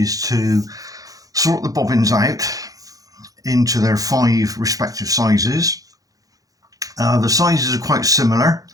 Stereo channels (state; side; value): late; left; 0.17 ms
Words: to sort the bobbins out into their 5 respective sizes. The sizes are quite similar,